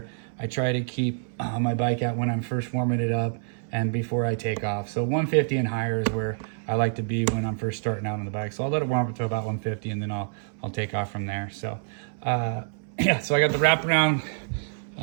I try to keep my bike at when I'm first warming it up and before I take off. So 150 and higher is where I like to be when I'm first starting out on the bike. So I'll let it warm up to about 150 and then I'll take off from there. So yeah, so I got the wraparound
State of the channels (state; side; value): silent; left; 60 dB below the other